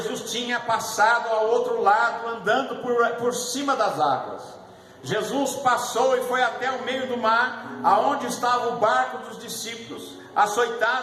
tinha passado ao outro lado, andando por cima das águas. Jesus passou e foi até o meio do mar, aonde estava o barco dos discípulos,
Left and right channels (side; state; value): both; identical; correlation 1.00